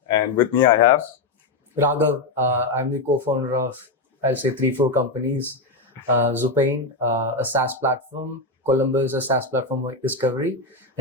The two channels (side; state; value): right; quieter; 3.2 dB